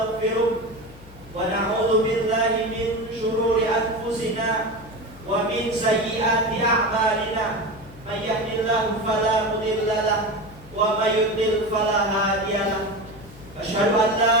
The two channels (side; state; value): left; noise; hum, 20 dB below the sound